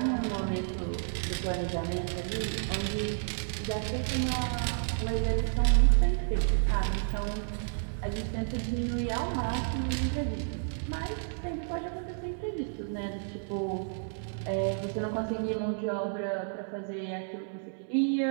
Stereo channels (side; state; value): left; silent; 57 dB below the other